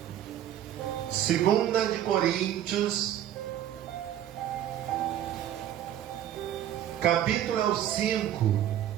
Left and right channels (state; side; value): quieter; left; 11.3 dB